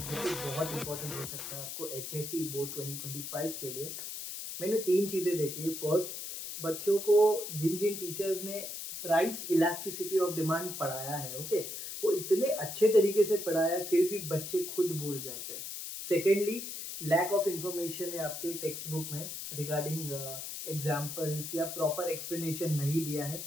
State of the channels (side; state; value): left; noise; hiss, 7 dB below the sound